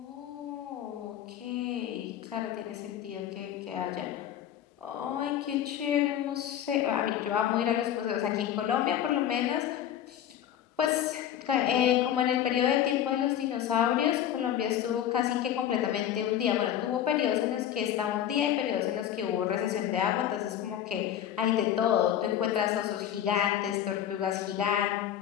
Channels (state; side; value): quieter; right; 10.7 dB